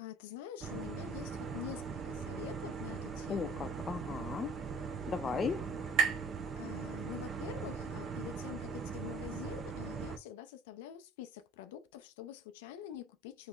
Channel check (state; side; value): normal; both; correlation 0.50